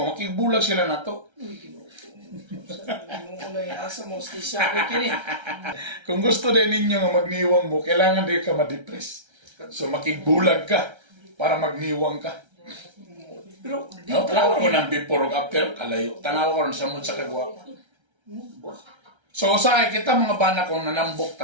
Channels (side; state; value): left; late; 1.3 ms